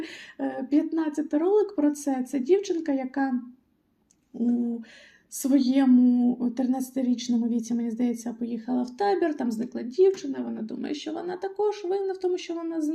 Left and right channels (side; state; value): both; identical; correlation 1.00